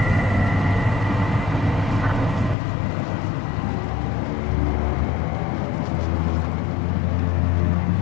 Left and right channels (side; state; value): right; drops out; at 2.6 s